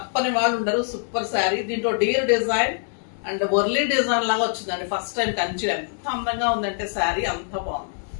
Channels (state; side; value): silent; right; 56 dB below the other